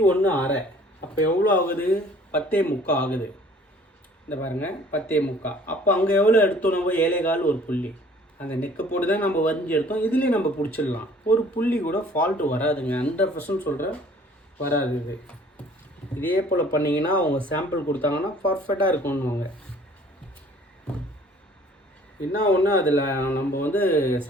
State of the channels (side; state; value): both; normal; correlation 0.54